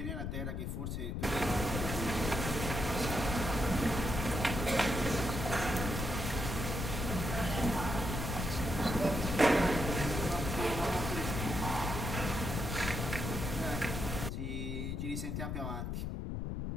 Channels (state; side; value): noise; left; rumble, 3 dB below the sound